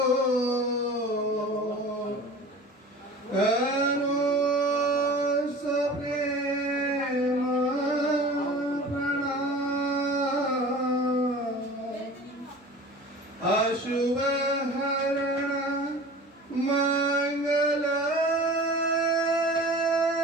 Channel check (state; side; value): normal; both; correlation 0.39